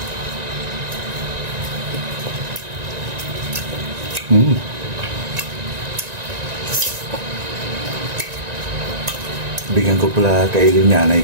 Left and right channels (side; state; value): left; late; 1.9 ms